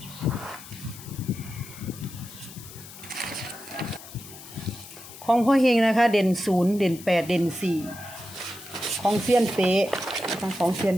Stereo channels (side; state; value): left; noise; hiss, 16 dB below the sound